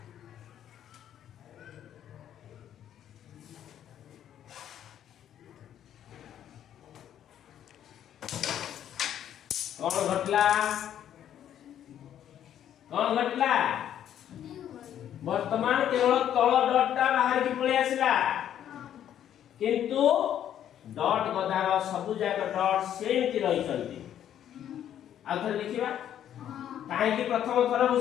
कौन घटला वर्तमान केवल तळ डॉटटा बाहर की पळे आसिला किंतु डॉट गदार सब जाक डॉट सेमति रही चलती आथर देखिबा काहे की प्रथम थर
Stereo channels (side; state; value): right; quieter; 10.4 dB